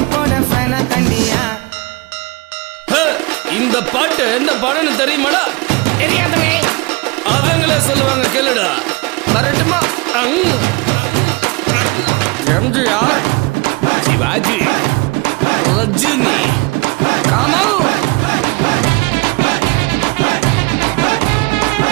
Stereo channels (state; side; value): quieter; left; 25.6 dB